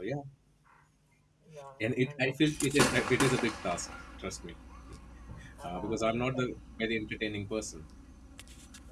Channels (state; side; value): identical; both; correlation 1.00